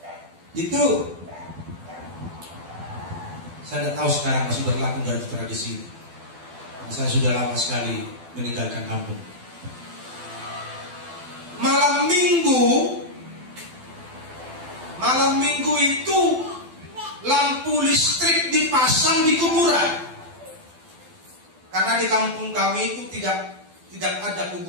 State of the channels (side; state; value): left; late; 12 ms